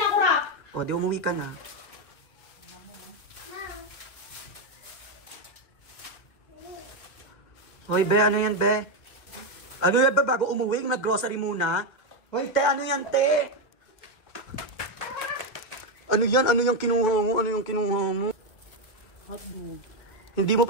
ako, Rap. Oh, di umuwi ka na. Hoy, be, ano yan, be? Ano yan, be, bago umuwi, nag-grocery muna? Hoy, te, ano yan, te? Ano yan? Ano yung kinuha mo? Ano yung kinuha mo? Hotdog. Hindi mo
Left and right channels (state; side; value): late; right; 1.8 ms